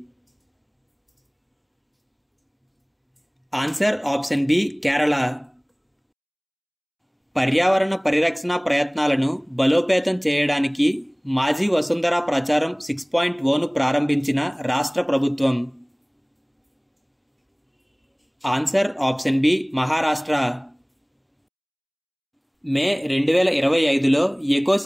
Answer option B Kerala. పర్యావరణ పరిరక్షణ ప్రయత్నాలను బలోపేతం చేయడానికి మాజీ వసుంధర ప్రచారం 6.0ను ప్రారంభించిన రాష్ట్ర ప్రభుత్వం? Answer option B Maharashtra. May 2025లో ఎకో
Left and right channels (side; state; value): both; identical; correlation 1.00